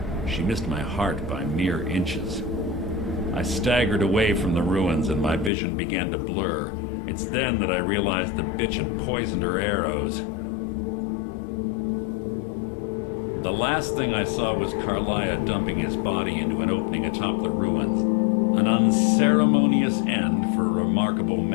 She missed my heart by mere inches. I staggered away from the ruins and my vision began to blur. It's then that I realized the bitch had poisoned her arrows. The last thing I saw was Carlia dumping his body into an opening atop the ruins. An unceremonious end for a remarkable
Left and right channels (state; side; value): drops out; right; at 5.5 s